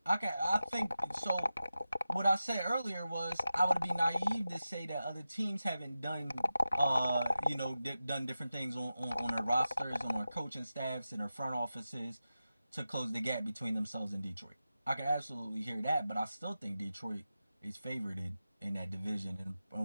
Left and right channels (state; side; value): inverted; both; correlation -0.93